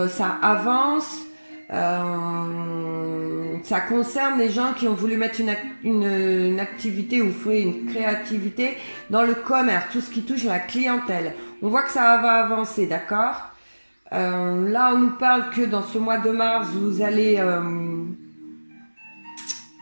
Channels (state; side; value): inverted; both; correlation -1.00